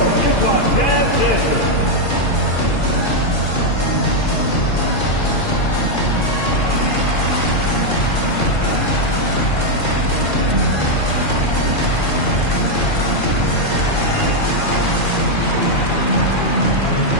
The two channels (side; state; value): right; late; 2.4 ms